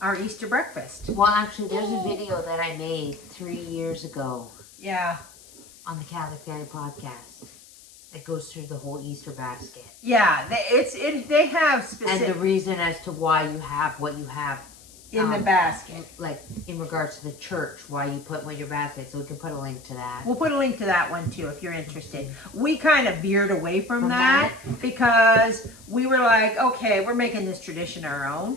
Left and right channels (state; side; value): noise; left; hiss, 22 dB below the sound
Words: Easter breakfast. Well, actually, there's a video that I made 3 years ago. Yeah. On the Catholic Guy podcast that goes through the whole Easter basket. Yeah, they have specific. And the reason as to why you have what you have in the basket. Like in regards to the church, why you put one in your basket, so we can put a link to that. We'll put a link to that one too if you're interested. We kind of veered away from that because we were like, okay, we're making this tradition our own.